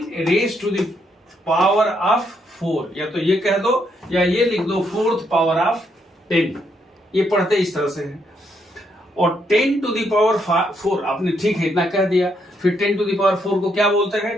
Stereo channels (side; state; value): both; normal; correlation 0.75